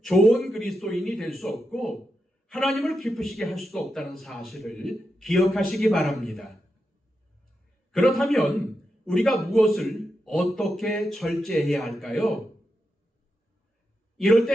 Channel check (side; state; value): both; normal; correlation 0.87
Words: 좋은 그리스도인이 될 수 없고 하나님을 기쁘시게 할 수도 없다는 사실을 기억하시기 바랍니다. 그렇다면 우리가 무엇을 어떻게 절제해야 할까요? 이럴